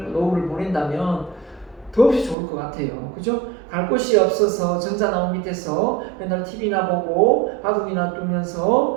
노후를 보낸다면 더없이 좋을 것 같아요. 그죠? 갈 곳이 없어서 정자나무 밑에서 맨날 TV나 보고 바둑이나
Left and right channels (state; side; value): drops out; left; at 2.4 s